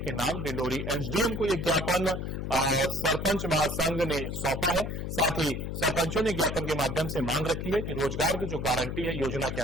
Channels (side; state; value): left; noise; hum, 4 dB below the sound